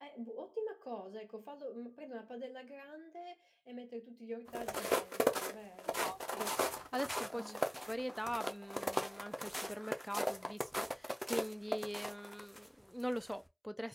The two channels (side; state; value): both; identical; correlation 1.00